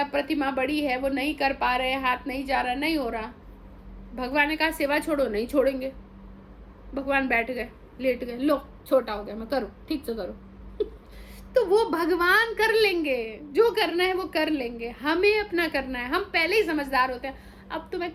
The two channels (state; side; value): identical; both; correlation 1.00